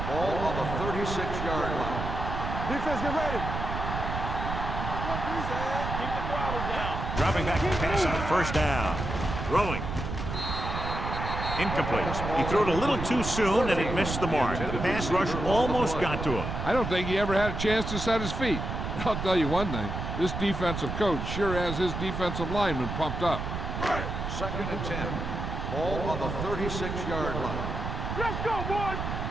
Ball on the 36-yard line. Defense, get ready. Keep the throttle down. Dropping back to pass on first down. Throwing. Incomplete. He threw it a little too soon, and it missed the mark. The pass rush almost got to him. I don't think he ever had a chance to set his feet. I'll tell you one thing, this defensive coach sure has his defensive lineman pumped up. Second and 10. Ball on the 36-yard line. Let's go, boys.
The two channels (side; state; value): right; noise; rumble, 4 dB below the sound